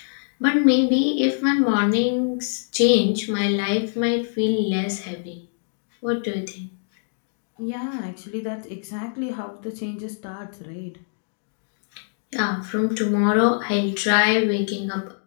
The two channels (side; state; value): right; silent; digital silence